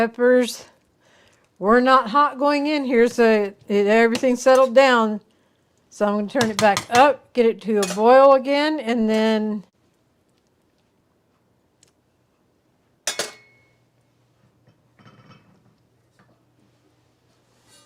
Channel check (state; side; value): identical; both; correlation 1.00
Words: were not hot going in here, so everything settled down. So I'm going to turn it back up, get it to a boil again, and then